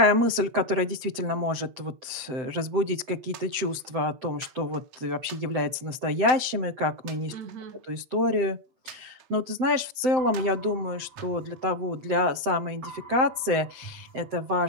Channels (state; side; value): late; left; 7.8 ms